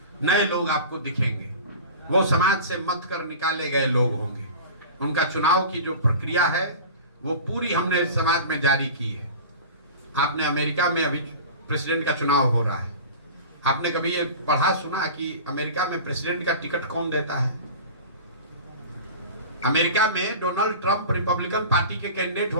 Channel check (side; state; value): both; inverted; correlation -0.35